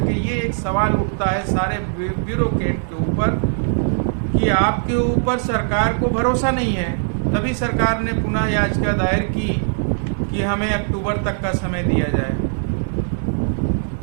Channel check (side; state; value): left; silent; digital silence